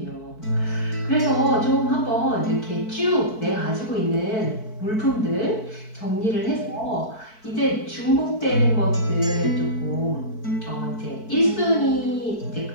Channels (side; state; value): right; late; 4.6 ms